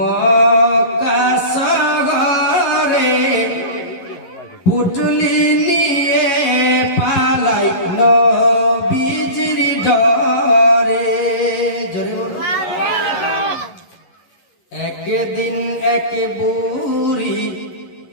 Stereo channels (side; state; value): right; late; 11 ms